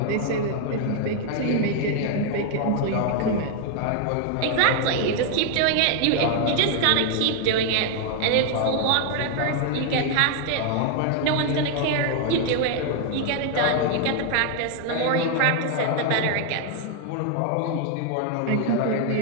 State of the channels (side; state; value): both; different; correlation 0.00